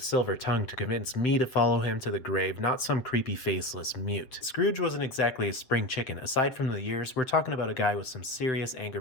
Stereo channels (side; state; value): right; late; 7.7 ms